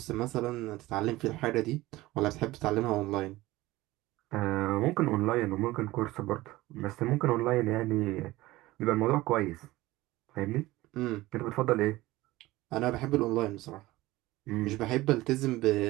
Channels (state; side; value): quieter; left; 18.4 dB